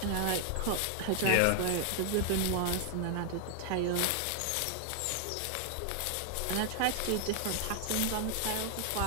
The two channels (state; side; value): different; both; correlation 0.00